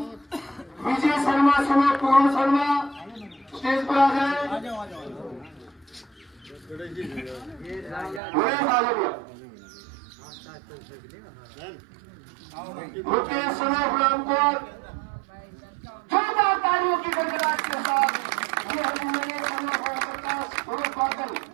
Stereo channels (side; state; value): left; drops out; at 8.2 s